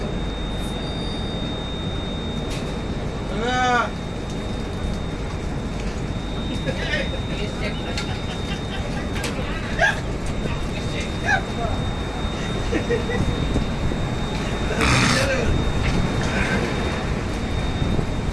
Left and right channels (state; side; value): identical; both; correlation 1.00